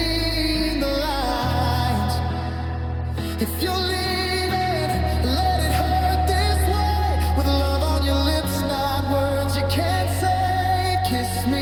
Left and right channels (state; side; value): identical; both; correlation 1.00